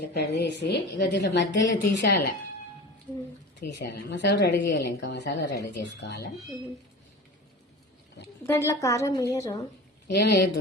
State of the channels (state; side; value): normal; both; correlation 0.34